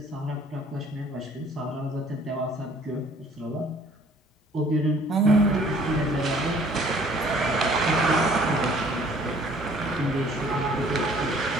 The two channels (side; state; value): both; normal; correlation 0.56